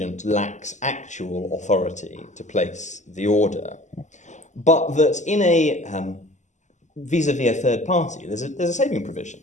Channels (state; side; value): late; right; 0.34 ms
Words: lacks actual authority to place the order, but that in a vis-a-vis a third party, there's a saving